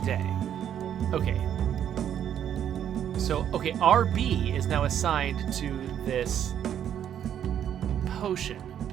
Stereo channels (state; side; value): quieter; left; 9.7 dB